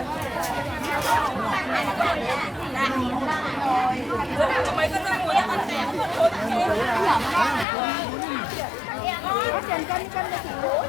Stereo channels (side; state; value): right; drops out; at 7.7 s